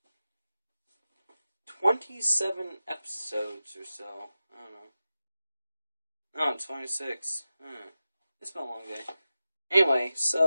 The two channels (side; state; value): both; inverted; correlation -0.93